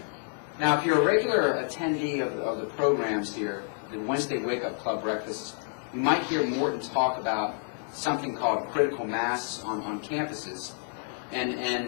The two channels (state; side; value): silent; right; 59 dB below the other